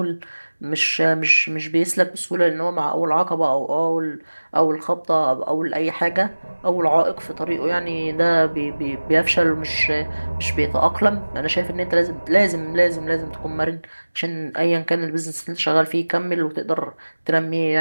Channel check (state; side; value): inverted; both; correlation -1.00